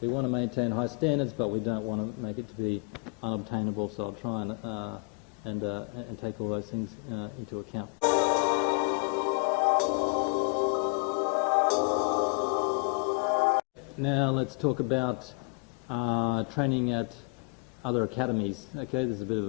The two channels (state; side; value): quieter; right; 38.1 dB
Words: want to maintain high standards, but we don't want to make it to be unobtainable. So I'll try and take all those things into account. Now let's talk about training at other academies. Okay, there's a bit of